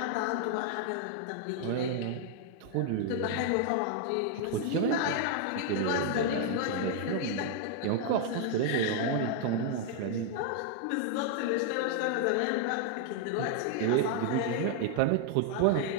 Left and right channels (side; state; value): both; different; correlation 0.00